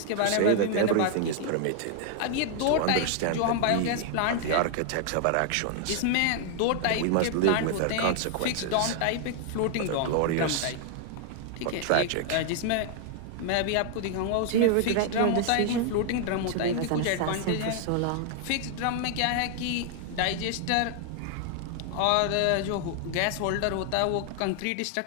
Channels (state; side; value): different; both; correlation 0.00